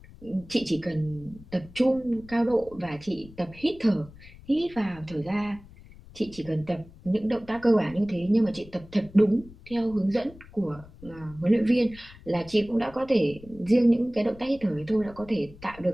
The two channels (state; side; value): noise; left; rumble, 20 dB below the sound